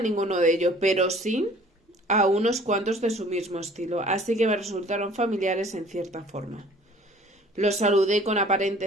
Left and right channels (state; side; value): normal; both; correlation 0.52